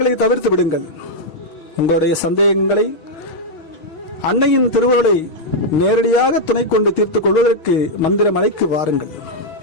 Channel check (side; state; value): right; late; 6.4 ms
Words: தவிர்த்து விடுங்கள். உங்களுடைய சந்தேகங்களை அன்னையின் திருவுருளை நேரடியாக துணை கொண்டு தீர்த்துக் கொள்வதற்கு மந்திரமலைக்கு வாருங்கள்.